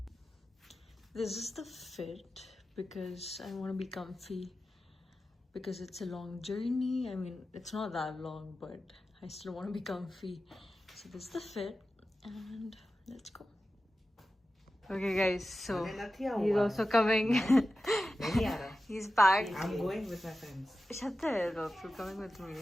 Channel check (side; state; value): both; normal; correlation 0.93